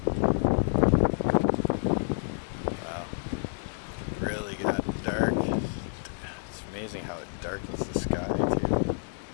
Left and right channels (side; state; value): right; silent; digital silence